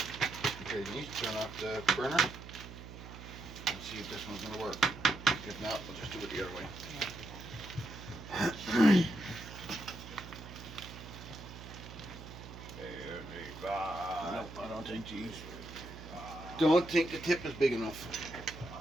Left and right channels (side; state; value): right; noise; hum, 13 dB below the sound